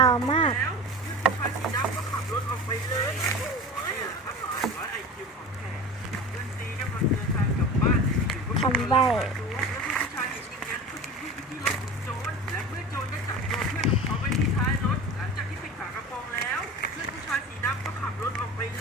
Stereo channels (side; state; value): both; normal; correlation 0.33